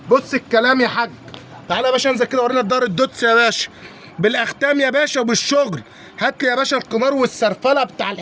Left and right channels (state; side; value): identical; both; correlation 1.00